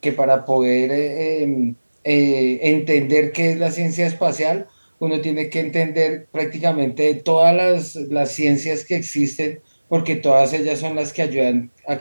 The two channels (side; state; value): both; inverted; correlation -1.00